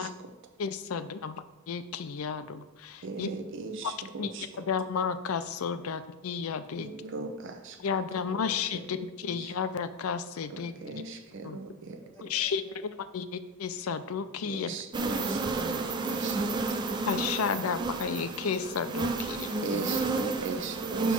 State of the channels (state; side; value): normal; both; correlation 0.19